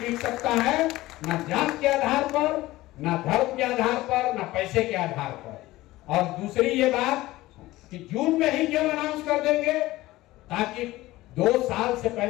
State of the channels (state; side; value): quieter; right; 17.7 dB